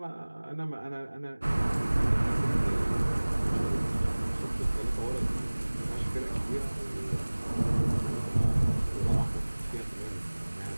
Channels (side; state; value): both; inverted; correlation -1.00